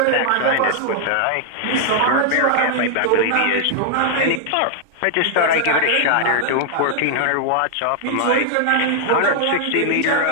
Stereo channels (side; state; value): both; different; correlation 0.00